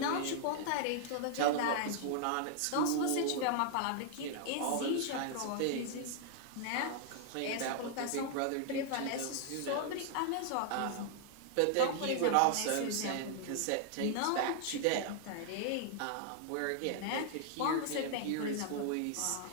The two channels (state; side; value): different; both; correlation -0.01